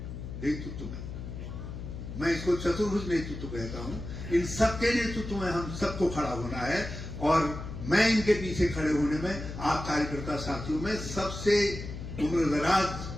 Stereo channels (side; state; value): left; noise; hum, 8 dB below the sound